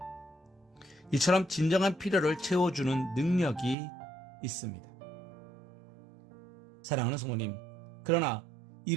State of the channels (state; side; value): drops out; left; at 3.8 s